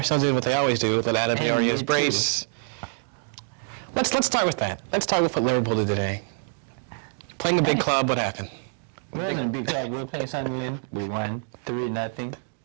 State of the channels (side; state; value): left; silent; 61 dB below the other